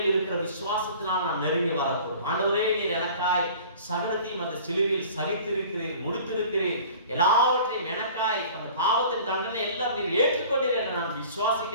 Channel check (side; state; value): both; inverted; correlation -0.46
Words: இருக்கிற விசுவாசத்தினால் நாம் நெருங்கி வரக்கூடும். ஆண்டவரே, நீர் எனக்காய் சகலத்தையும் அந்த சிலுவையில் சகித்திருக்கிறீர், முடித்திருக்கிறீர், எல்லாவற்றையும் எனக்காய் அந்த பாவத்தின் தண்டனை எல்லாம் நீர் ஏற்றுக்கொண்டீர் என்று நான்